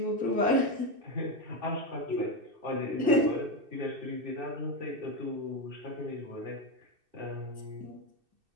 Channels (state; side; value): late; left; 2.6 ms